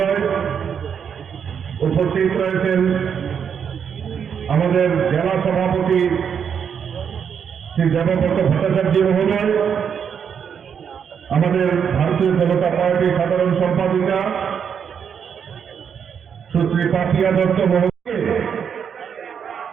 উপস্থিত রয়েছেন আমাদের জেলা সভাপতি শ্রী দেবব্রত ভট্টাচার্য মহোদয়, আমাদের ভারতীয় জনতা পার্টির সাধারণ সম্পাদিকা সুশ্রী পাপিয়া দত্ত মহোদয়,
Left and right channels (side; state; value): left; quieter; 7.4 dB